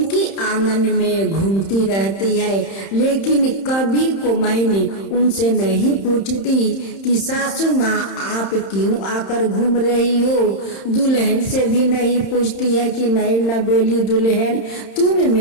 आंगन में घूमती रहती है, लेकिन कभी कुम्हार उनसे नहीं पूछती कि सासू माँ आप क्यों आकर घूम रही हो। दुल्हन से भी नहीं पूछती है कि नई नवेली दुल्हन तुम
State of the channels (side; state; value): right; late; 31 ms